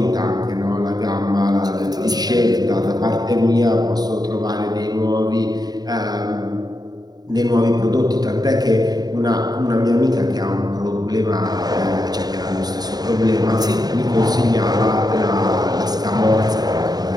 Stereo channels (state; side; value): late; left; 0.19 ms